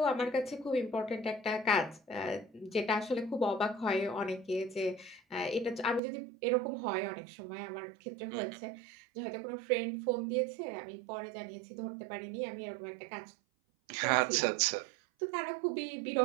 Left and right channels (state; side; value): drops out; left; at 6.0 s